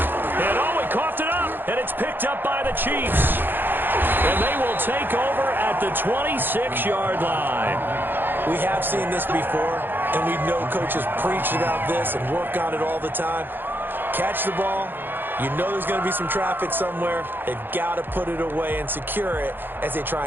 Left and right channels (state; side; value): late; left; 0.097 ms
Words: he coughed it up, and it's picked up by the Chiefs. And they will take over at the 26-yard line. We have seen this before, and we know coaches preach about this and work on it all the time. Catch the ball. You know there's going to be some traffic somewhere. They've got to put it away and secure it as they